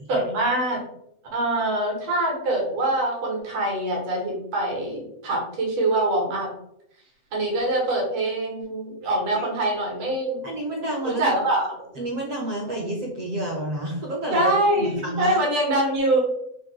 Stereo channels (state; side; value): late; left; 7.8 ms